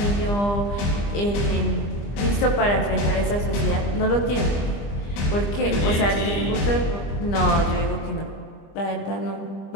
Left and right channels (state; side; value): late; right; 25 ms